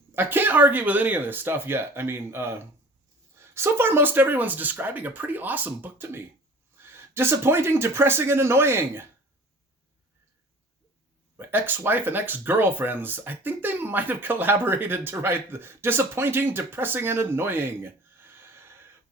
I can't argue with any of this stuff yet. I mean, so far most everyone's describing a pretty awesome book to me. Disappointing, depressing, and annoying. My ex-wife and ex-girlfriends, I think they might have collaborated to write the disappointing, depressing, and annoying.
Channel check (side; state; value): both; normal; correlation 0.45